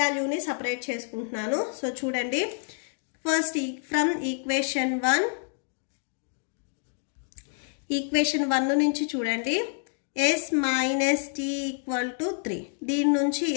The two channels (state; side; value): silent; right; 59 dB below the other